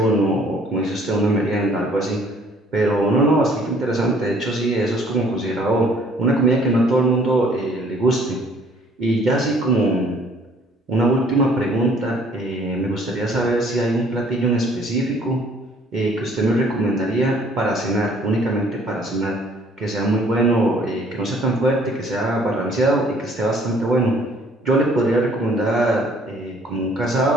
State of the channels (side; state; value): both; normal; correlation 0.58